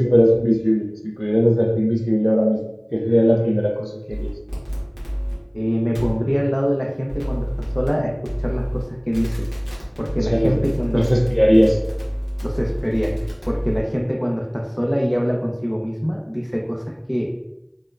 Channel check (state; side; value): identical; both; correlation 1.00